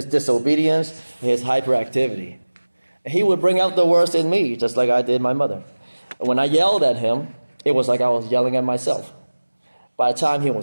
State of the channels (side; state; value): both; inverted; correlation -1.00